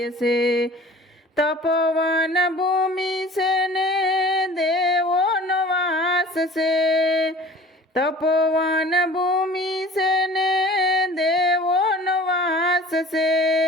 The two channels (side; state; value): both; normal; correlation 0.44